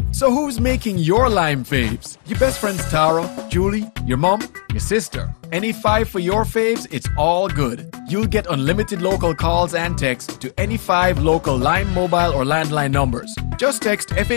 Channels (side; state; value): right; silent; digital silence